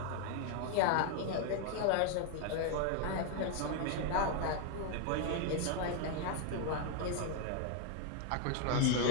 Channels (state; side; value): different; both; correlation 0.00